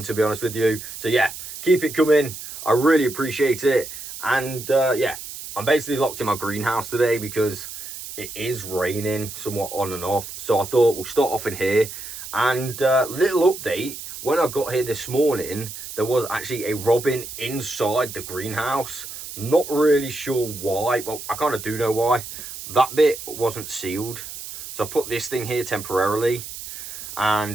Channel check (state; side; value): noise; right; hiss, 11 dB below the sound